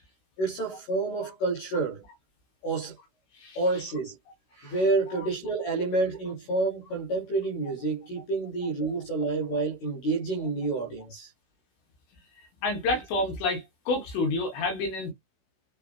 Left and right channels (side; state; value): right; late; 16 ms